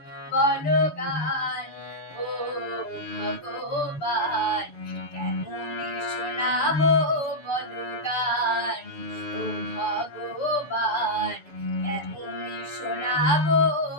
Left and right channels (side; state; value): right; late; 7.0 ms